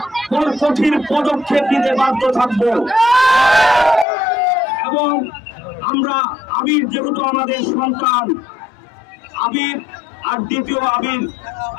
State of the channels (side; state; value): right; drops out; at 4.0 s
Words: কঠিন পদক্ষেপ নিতে বাধ্য থাকব। এবং আমরা আবির যেহেতু আমাদের সন্তান, আবির আর দ্বিতীয়